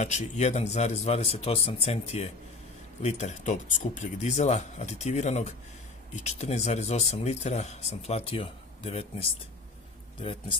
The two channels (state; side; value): quieter; right; 3.5 dB